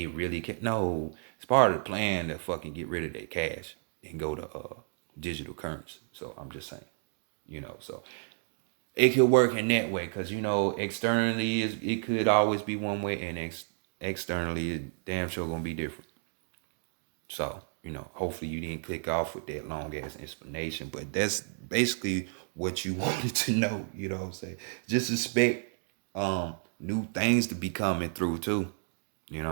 really can. No, it's part of the plan to fucking get rid of their cash and go to digital currency. So I'm just saying, you know, so it could work in that way because, you know, externally it could always be one way, and externally it damn sure gonna be different. So, you know, hopefully you didn't click off with that long ass explanation, but that's basically what you wanted to know, you know what I'm saying? Just expect New things to be coming through too. You know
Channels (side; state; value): left; silent; digital silence